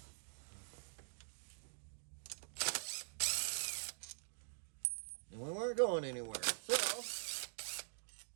And we weren't going anywhere. So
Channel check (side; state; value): left; silent; digital silence